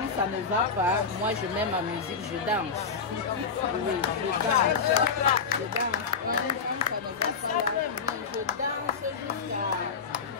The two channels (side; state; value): right; quieter; 5.5 dB